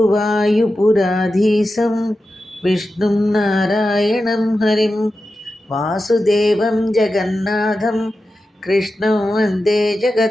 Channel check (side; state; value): both; normal; correlation 0.92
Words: విష్ణుం నారాయణం హరిం వాసుదేవం జగన్నాథం కృష్ణం వందే